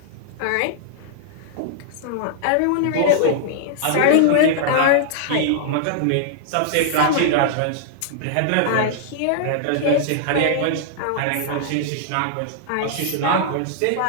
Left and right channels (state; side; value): different; both; correlation -0.01